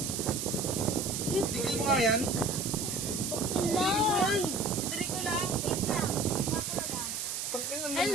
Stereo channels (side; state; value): right; noise; hiss, 3 dB below the sound